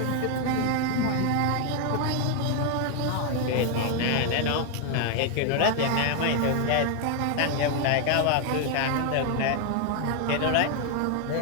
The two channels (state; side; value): different; both; correlation 0.00